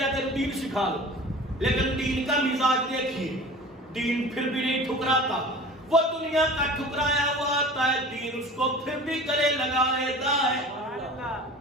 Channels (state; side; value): normal; both; correlation 0.40